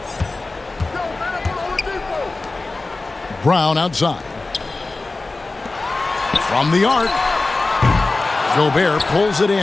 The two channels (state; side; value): quieter; right; 3.4 dB